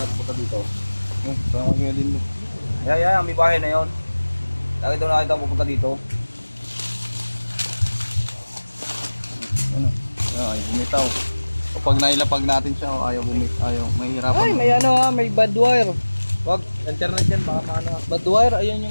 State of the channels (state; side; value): inverted; both; correlation -1.00